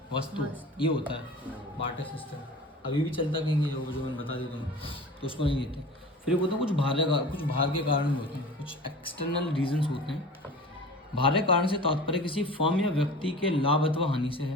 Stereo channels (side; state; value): both; normal; correlation 0.37